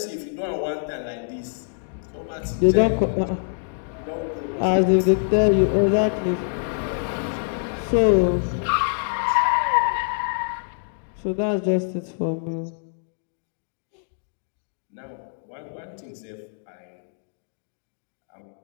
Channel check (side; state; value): right; silent; digital silence